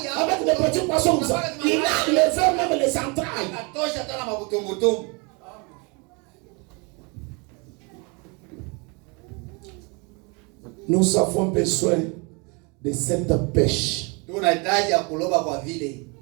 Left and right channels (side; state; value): left; quieter; 30.9 dB